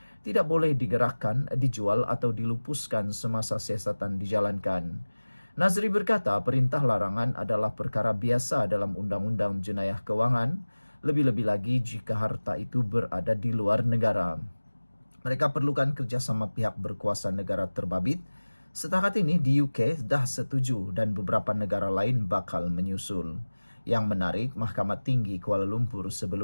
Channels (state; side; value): inverted; both; correlation -1.00